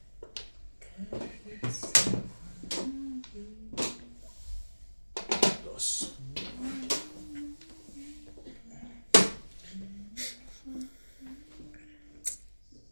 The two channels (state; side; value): inverted; both; correlation -1.00